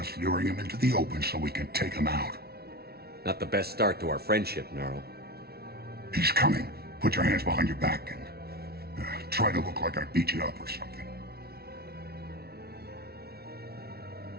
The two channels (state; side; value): late; left; 0.45 ms